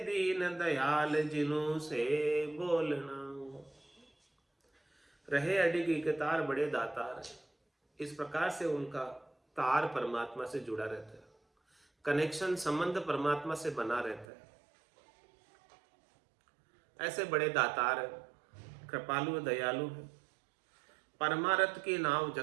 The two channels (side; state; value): left; drops out; at 14.2 s